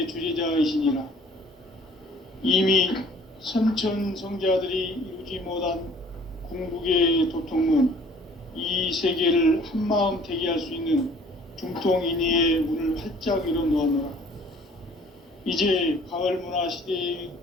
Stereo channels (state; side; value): normal; both; correlation 0.54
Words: 주재자이시니라. 이미 선천성자들이 이루지 못한 궁극의 도통문, 이 세계를 한마음 되게 할 수 있는 중통인의의 문을 활짝 열어놓았노라. 이제 가을 문화 시대의